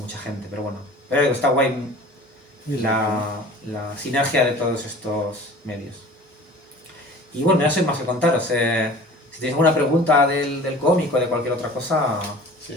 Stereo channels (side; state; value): both; normal; correlation 0.43